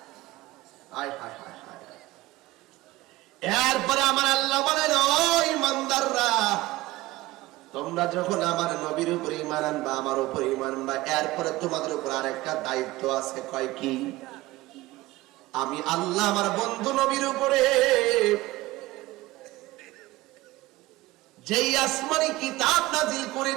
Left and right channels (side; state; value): left; quieter; 18.6 dB